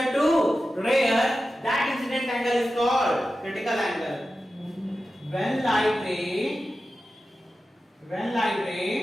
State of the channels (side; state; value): both; normal; correlation 0.93